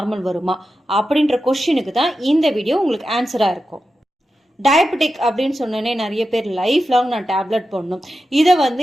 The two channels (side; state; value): both; normal; correlation 0.91